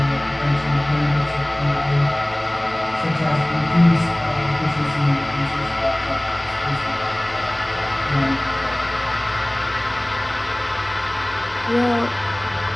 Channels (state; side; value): noise; right; hum, 27 dB below the sound